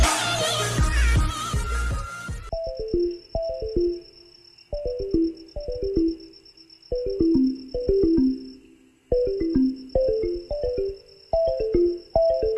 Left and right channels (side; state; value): both; identical; correlation 1.00